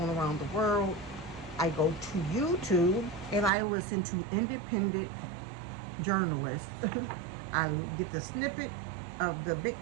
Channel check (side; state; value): left; drops out; at 3.5 s